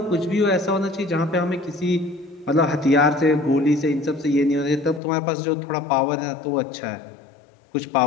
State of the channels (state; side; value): drops out; right; at 5.0 s